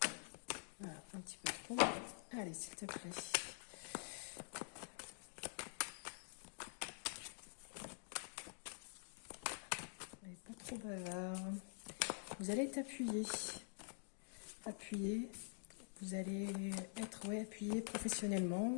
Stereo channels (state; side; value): silent; right; digital silence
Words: Voilà, un petit peu trop. Allez, s'il te plaît. Pas trop bavard. Vous allez être appuyé. Appuyé. Vous allez être appuyé